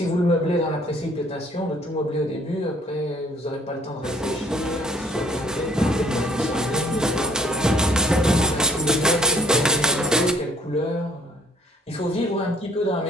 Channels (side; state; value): both; normal; correlation 0.61